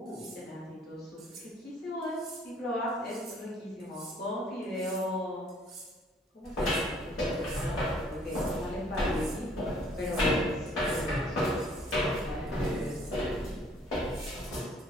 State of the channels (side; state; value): both; normal; correlation 0.59